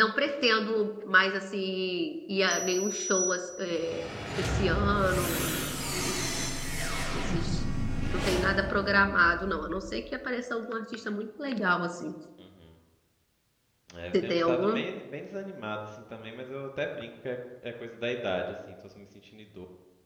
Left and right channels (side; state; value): both; identical; correlation 1.00